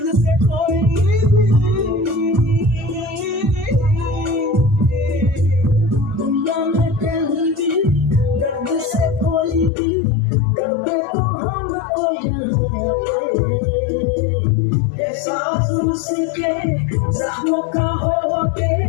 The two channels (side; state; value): right; drops out; at 9.7 s